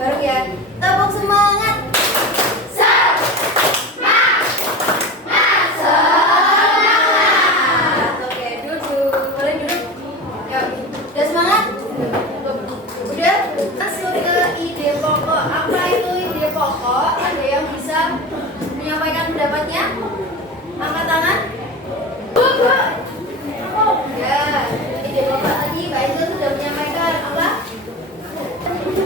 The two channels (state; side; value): normal; both; correlation 0.30